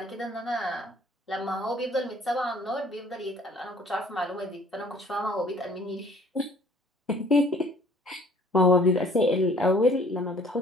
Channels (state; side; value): normal; both; correlation 0.56